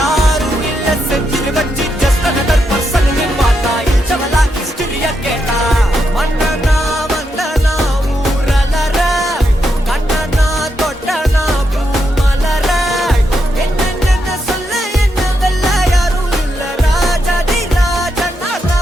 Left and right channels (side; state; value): both; normal; correlation 0.82